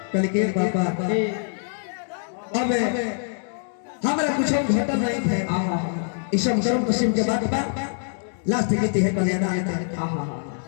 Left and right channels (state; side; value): silent; right; 62 dB below the other